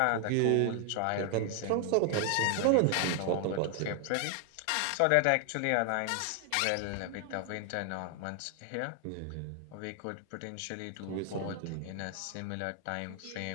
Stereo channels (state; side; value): different; both; correlation 0.00